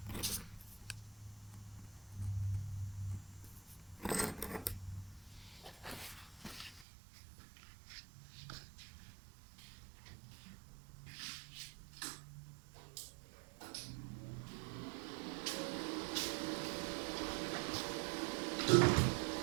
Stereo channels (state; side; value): drops out; left; at 6.9 s